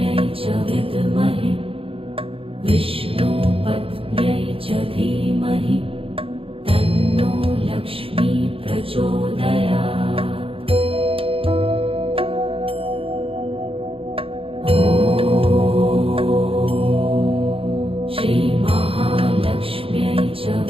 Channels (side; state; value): left; late; 0.27 ms